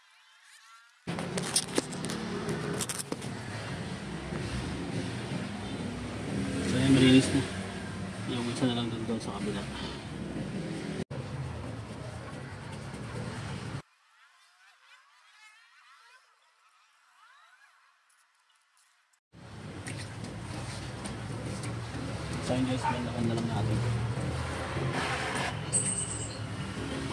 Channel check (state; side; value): identical; both; correlation 1.00